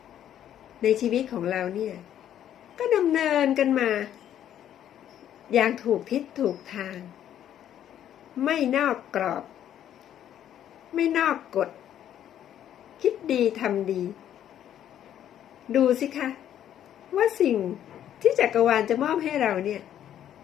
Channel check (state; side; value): quieter; right; 10.7 dB